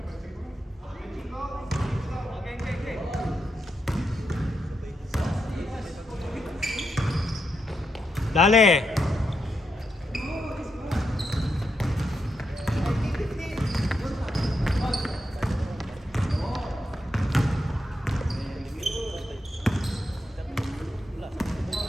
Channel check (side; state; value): both; normal; correlation 0.84